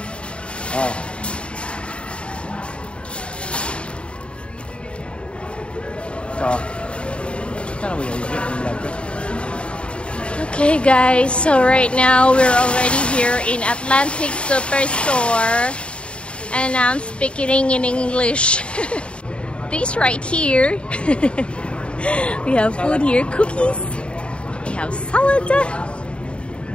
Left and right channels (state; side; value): late; right; 0.057 ms